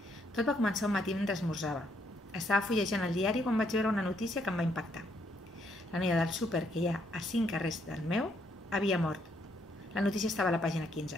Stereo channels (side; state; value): both; normal; correlation 0.73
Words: Tot va començar un matí mentre esmorzava. Estava fullejant el diari quan vaig veure una notícia que em va impactar. La noia del súper que hi ha a 5 carrers del meu havia mort. La notícia estava a la pàgina